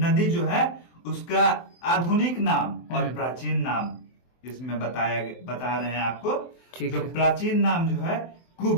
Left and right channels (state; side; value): late; right; 23 ms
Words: जो है उसका आधुनिक नाम और प्राचीन नाम इसमें बता रहे हैं आपको। जो प्राचीन नाम जो है